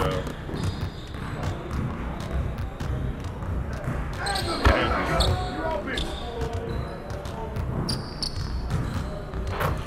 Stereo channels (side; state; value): both; identical; correlation 1.00